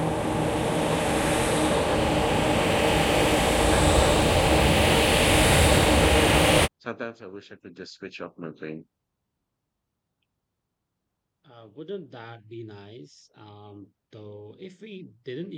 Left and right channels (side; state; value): both; identical; correlation 1.00